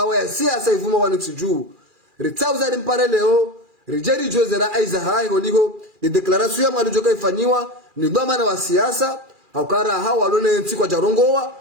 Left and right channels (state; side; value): late; left; 2.4 ms